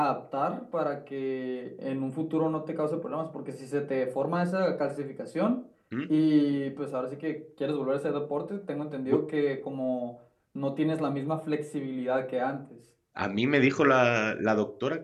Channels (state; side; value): identical; both; correlation 1.00